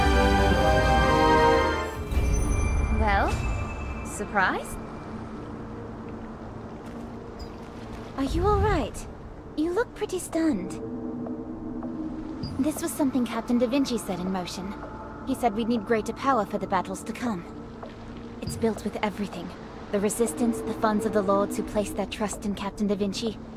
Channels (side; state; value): both; identical; correlation 1.00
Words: Well, surprised? Are you alright? You look pretty stunned. This was something Captain Da Vinci set in motion. He said we'd need greater power for the battles to come. It's built with everything. The Resistance, the funds of the Lords who placed their trust in Captain Da Vinci,